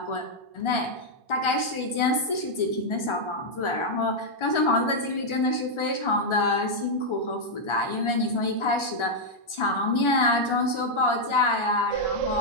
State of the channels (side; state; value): right; late; 1.4 ms